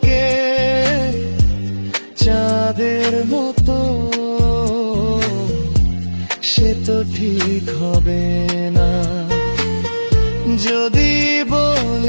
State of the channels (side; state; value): both; inverted; correlation -1.00